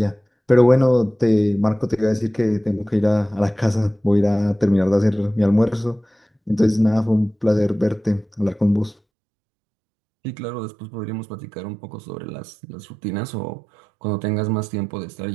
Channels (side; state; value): left; drops out; at 9.0 s